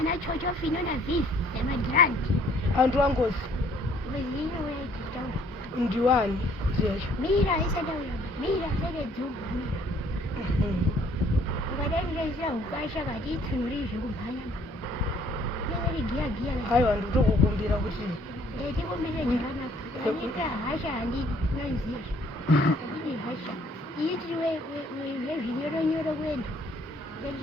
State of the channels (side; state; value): both; normal; correlation 0.61